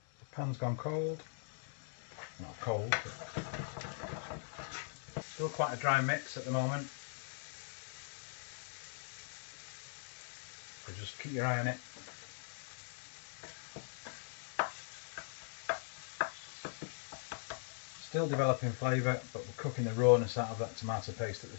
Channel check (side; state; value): right; silent; 51 dB below the other